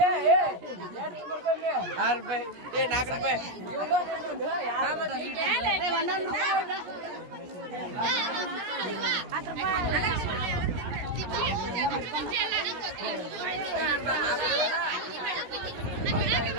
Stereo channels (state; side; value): late; left; 17 ms